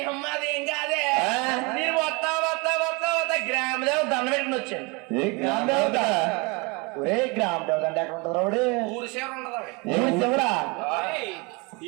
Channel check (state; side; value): quieter; left; 27.8 dB